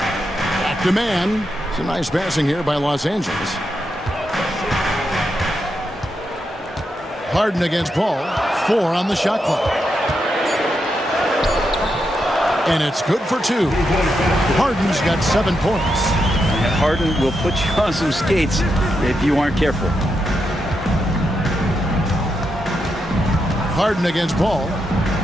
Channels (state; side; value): normal; both; correlation 0.84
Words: Back to man. Some nice passing here by Los Angeles. Harden against Paul. 4 on the shot clock. And it's good for 2. Harden's got 7 points. And Harden will put you on some skates if you aren't careful. Harden against Paul.